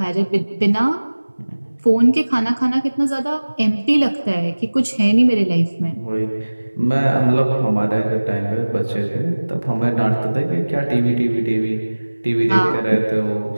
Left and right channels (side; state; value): both; inverted; correlation -1.00